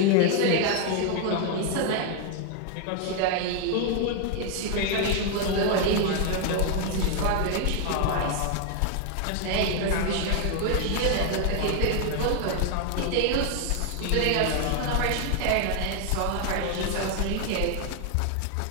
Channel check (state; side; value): different; both; correlation 0.00